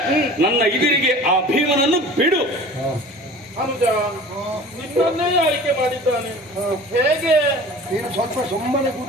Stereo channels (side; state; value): both; normal; correlation 0.42